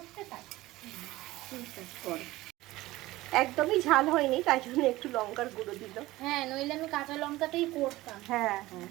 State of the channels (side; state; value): left; quieter; 18.1 dB